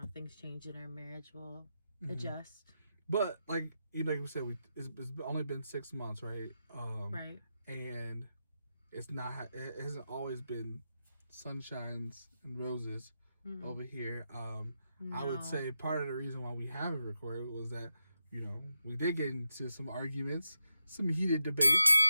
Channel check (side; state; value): both; inverted; correlation -0.88